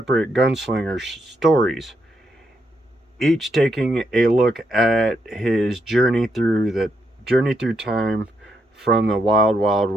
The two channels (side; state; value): both; normal; correlation 0.79